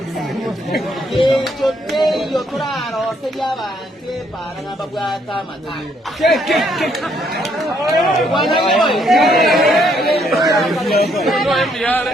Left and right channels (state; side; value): normal; both; correlation 0.70